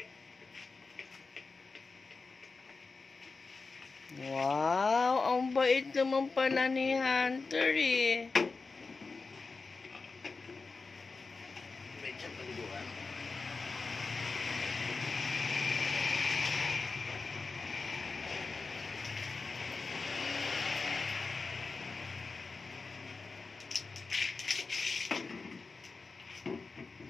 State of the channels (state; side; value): quieter; right; 4.2 dB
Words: Wow! Ang bait naman pala ni Hunter eh. Medyo paliguan.